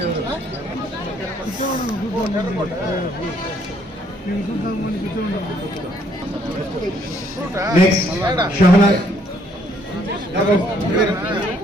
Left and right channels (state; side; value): normal; both; correlation 0.67